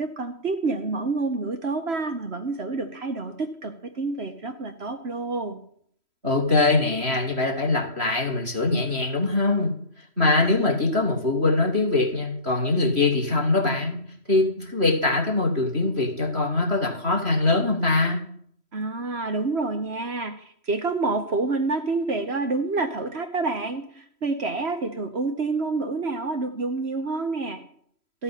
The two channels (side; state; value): left; late; 3.0 ms